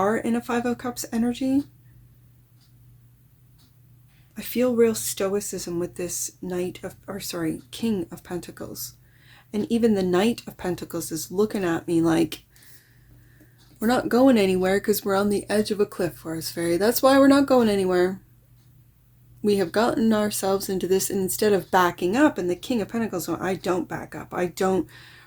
in a Five of Cups energy. I feel real stoicism with this King of Pentacles. And even the Knight of Pentacles is looking at me like, we're not going anywhere because we're on the edge of a cliff, Forest Fairy. That's why we're not going anywhere. We have gotten ourselves into this, and instead of backing up, and the King of Pentacles, I don't back up. I don't,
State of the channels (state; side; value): identical; both; correlation 1.00